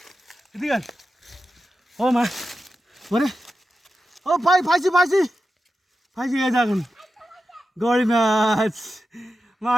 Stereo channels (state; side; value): normal; both; correlation 0.91